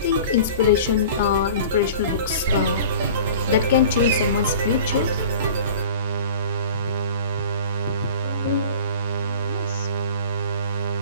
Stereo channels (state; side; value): inverted; both; correlation -0.41